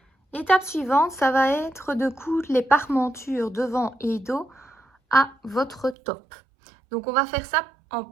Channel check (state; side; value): drops out; left; at 6.0 s